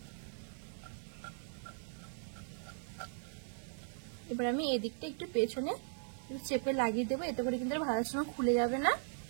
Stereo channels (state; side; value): silent; left; digital silence